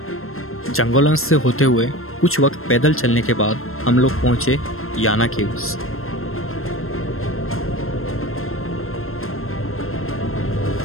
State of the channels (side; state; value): right; late; 0.62 ms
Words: जंगलों से होते हुए कुछ वक्त पैदल चलने के बाद हम लोग पहुंचे याना केव्स।